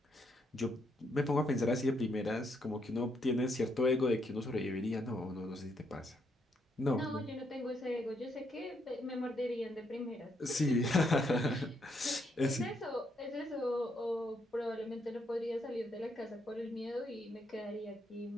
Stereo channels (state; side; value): normal; both; correlation 0.75